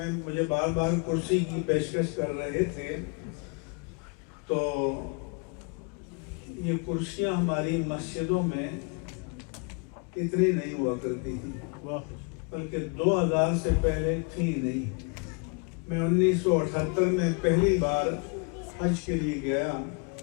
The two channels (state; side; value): quieter; right; 34.8 dB